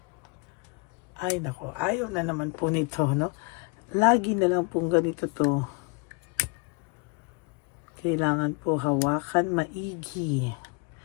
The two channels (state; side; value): quieter; right; 32.0 dB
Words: Ay nako, ayaw na naman po nito, no? Lagi na lang pong ganito to. Kailangan po hawakan maigi.